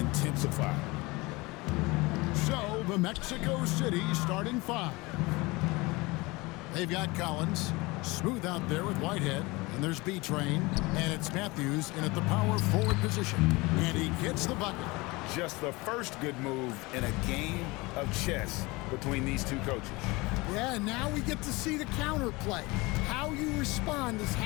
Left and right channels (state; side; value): quieter; right; 23.4 dB